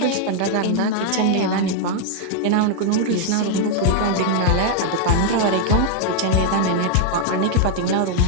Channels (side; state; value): both; different; correlation 0.00